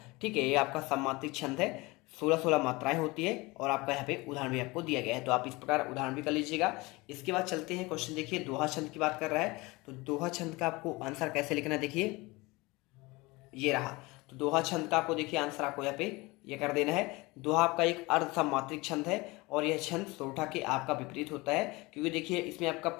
ठीक है। ये आपका सममात्रिक छंद है, 16 मात्राएं होती है और आपका यहाँ पे उदाहरण भी आपको दिया गया है। तो आप इस प्रकार उदाहरण भी कर लीजिएगा। इसके बाद चलते हैं क्वेश्चन देखिए दोहा छंद की बात कर रहा है। तो दोहा छंद का आपको आंसर कैसे लिखना है, देखिए ये रहा। तो दोहा छंद का आपको देखिए आंसर आपको यहाँ पे ये कर देना है। दोहा आपका एक अर्ध सममात्रिक छंद है और यह छंद सोरठा के आपका विपरीत होता है, क्योंकि देखिए इसमें आपका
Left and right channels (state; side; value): quieter; right; 23.2 dB